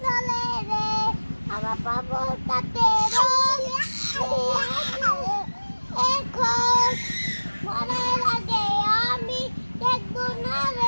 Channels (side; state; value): both; inverted; correlation -1.00